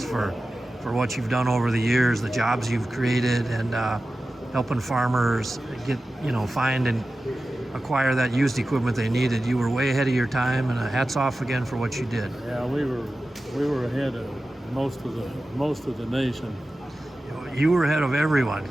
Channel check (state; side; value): normal; both; correlation 0.94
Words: for what you've done over the years, the jobs you've created, and helping farmers get, find and acquire that used equipment they needed. You were way ahead of your time, and hats off again for what you did. Yeah, we were ahead of most of the nation. You were ahead of everyone,